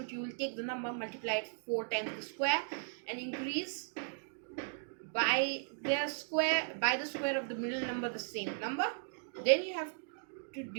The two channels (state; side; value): silent; left; digital silence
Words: you will take the number, multiply it 4 times the square, and increase by the square of the middle number the same number. Then you have to